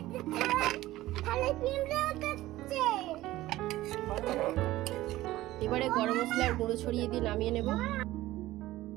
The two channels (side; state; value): left; quieter; 16.4 dB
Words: এবারে গরম মশলার গুঁড়ো ছড়িয়ে দিয়ে নামিয়ে নেব।